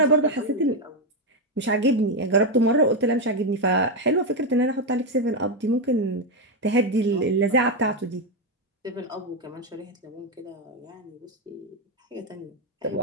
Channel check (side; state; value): both; normal; correlation 0.06